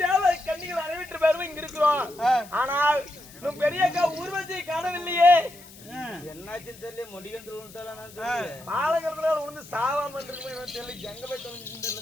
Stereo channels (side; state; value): left; noise; hiss, 20 dB below the sound